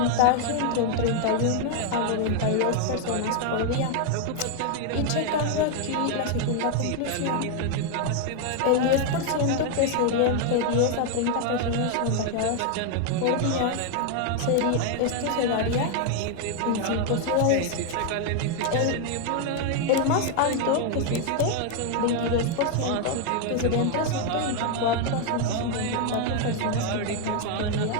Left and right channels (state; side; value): different; both; correlation 0.01